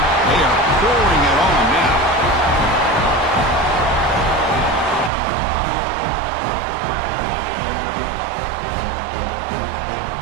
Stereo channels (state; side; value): drops out; left; at 5.1 s